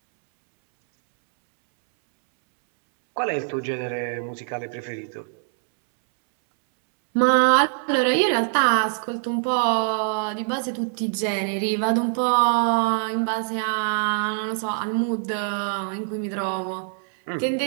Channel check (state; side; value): silent; left; 63 dB below the other